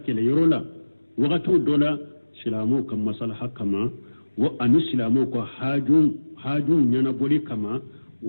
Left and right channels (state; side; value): inverted; both; correlation -1.00